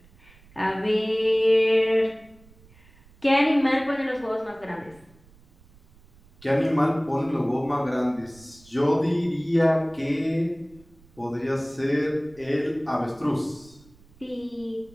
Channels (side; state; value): right; noise; rumble, 27 dB below the sound